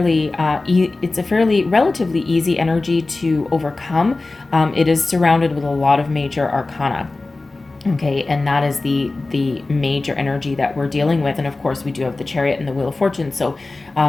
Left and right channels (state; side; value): quieter; right; 3.3 dB